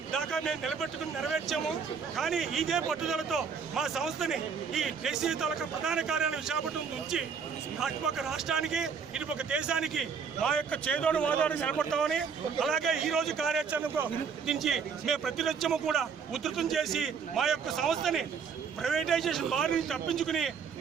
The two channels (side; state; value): left; quieter; 6.1 dB